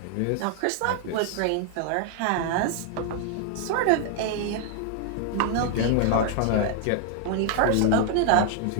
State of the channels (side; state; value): both; different; correlation 0.00